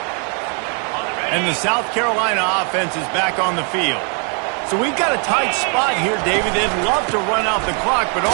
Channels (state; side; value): quieter; left; 39.2 dB